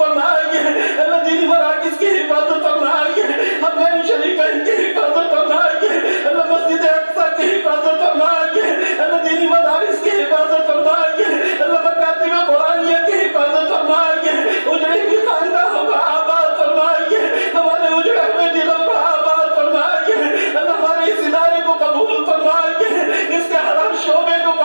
اللہ دینی مراکز کی حفاظت فرمائیے، حرمین شریفین کی حفاظت فرمائیے، اللہ مسجد اقصی کی حفاظت فرمائیے، اللہ دینی مدارس کی حفاظت فرمائیے، اللہ مکاتب قرآنیہ کی حفاظت فرمائیے، اجڑی ہوئی خاندانوں کو آباد فرمائیے، ہمارے اجڑے ہوئے دلوں کو آباد فرمائیے، اللہ ہمارے اس ادارے کو قبول فرمائیے، اس کے ہر شعبے کو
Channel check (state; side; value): inverted; both; correlation -1.00